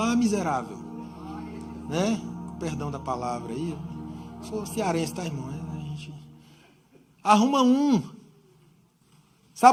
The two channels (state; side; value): identical; both; correlation 1.00